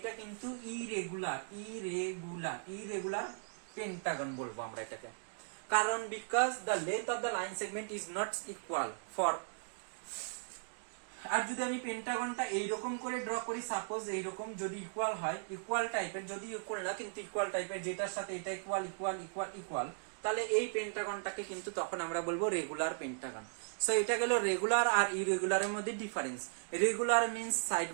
কিন্তু irregular Pentagon বলবো আমরা এটাকে। কারণ because the length of the line segment is not equal for. আর যদি আমি পেন্টাগনটা এইরকম করে ড্র করি, সাপোজ এইরকম যদি ইকুয়াল হয়, ইকুয়াল টাইপের, যদি ইকুয়াল না কিন্তু ইকুয়াল টাইপের, যেটার সাথে এটা ইকুয়াল ইকুয়াল ইকুয়াল ইকুয়াল, তাহলে এই পেন্টাগনটাকে কিন্তু তখন আমরা বলবো রেগুলার পেন্টাগন। সো এটা গেল রেগুলার আর ইরেগুলারের মধ্যে ডিফারেন্স। রেগুলার মিন্স সাইড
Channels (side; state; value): left; silent; digital silence